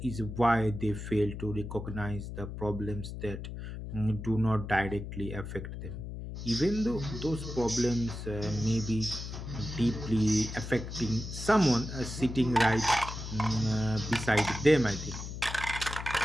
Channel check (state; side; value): noise; left; hum, 8 dB below the sound